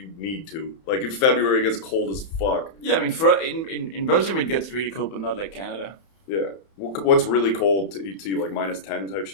need to. Like in February, it gets cold as fuck. Yeah, I mean, in Belgium, it gets really cold, but not like Canada. Yeah. What's really cold to you, like -10 type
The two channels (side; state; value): right; late; 31 ms